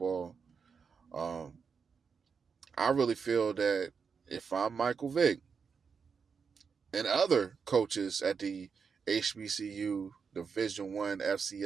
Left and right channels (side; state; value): left; quieter; 5.9 dB